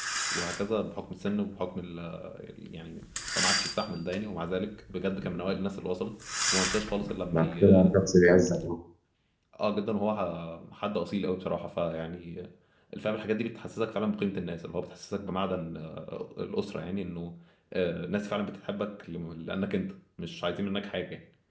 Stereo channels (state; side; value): identical; both; correlation 1.00